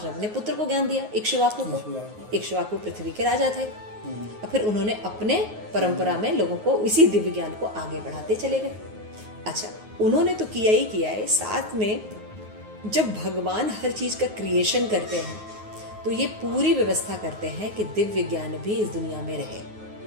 अपने पुत्र को ज्ञान दिया, इक्ष्वाकु को। इक्ष्वाकु पृथ्वी के राजा थे। फिर उन्होंने अपने परंपरा में लोगों को इसी दिव्य ज्ञान को आगे बढ़ाते चले गए। अच्छा, उन्होंने तो किया ही किया है, साथ में जब भगवान हर चीज का क्रिएशन करते हैं तो ये पूरी व्यवस्था करते हैं कि दिव्य ज्ञान भी इस दुनिया में रहे।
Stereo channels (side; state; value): left; late; 9.4 ms